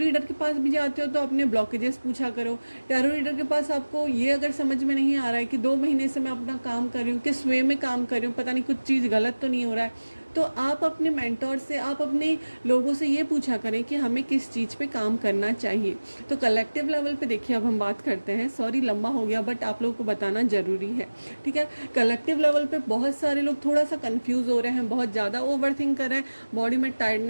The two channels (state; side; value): inverted; both; correlation -1.00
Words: के पास भी जाते हो तो अपने ब्लॉकेजेस पूछा करो। टैरो रीडर के पास आपको ये अगर समझ में नहीं आ रहा है कि 2 महीने से मैं अपना काम कर रही हूँ, किस वे में काम कर रही हूँ, पता नहीं कुछ चीज़ गलत तो नहीं हो रहा है, तो आप अपने मेंटोर से, आप अपने लोगों से ये पूछा करें कि हमें किस चीज़ पे काम करना चाहिए। तो कलेक्टिव लेवल पे देखिए अब हम बात करते हैं, सॉरी लंबा हो गया बट आप लोगों को बताना ज़रूरी है, ठीक है। कलेक्टिव लेवल पे बहुत सारे लोग थोड़ा सा कंफ्यूज हो रहे हैं, बहुत ज़्यादा ओवरथिंक कर रहे हैं, बॉडी में